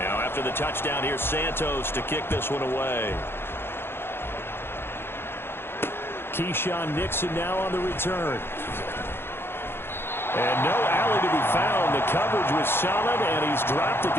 The touchdown here, Santos to kick this one away. Keyshawn Nixon now on the return. And no alley to be found. The coverage was solid, and he's dropped at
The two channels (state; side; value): late; right; 0.11 ms